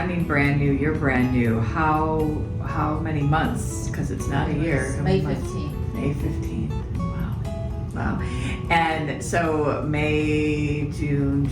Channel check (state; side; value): identical; both; correlation 1.00